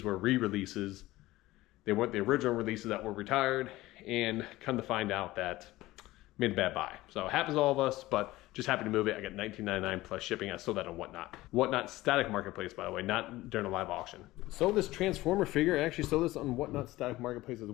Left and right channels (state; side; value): quieter; right; 17.8 dB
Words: were re-releases. They weren't the original releases that were retired, and come to find out that made a bad buy. So it happens to all of us, but just happy to move it. I got $19.99 plus shipping. I sold that on Whatnot. Whatnot static marketplace, by the way, not during a live auction. Sold this Transformer figure. I actually sold this on Whatnot static marketplace as